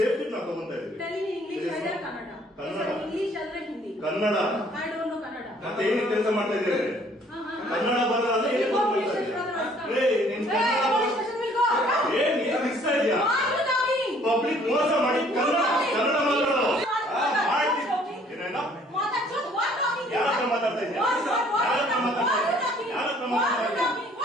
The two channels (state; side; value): normal; both; correlation 0.59